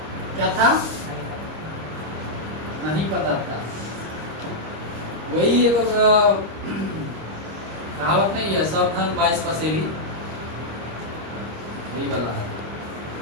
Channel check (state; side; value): late; left; 26 ms